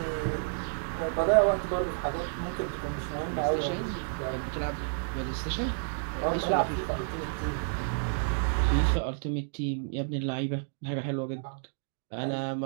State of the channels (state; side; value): silent; left; digital silence